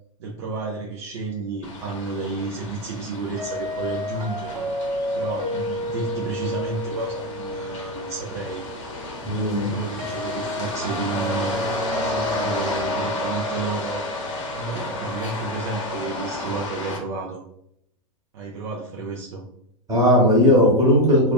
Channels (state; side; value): normal; both; correlation 0.11